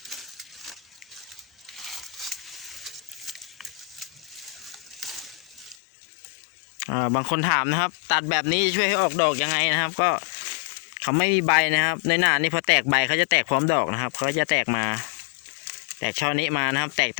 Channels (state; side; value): drops out; right; at 5.8 s